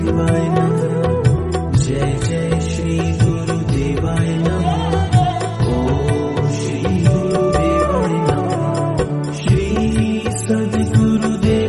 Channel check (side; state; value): both; identical; correlation 1.00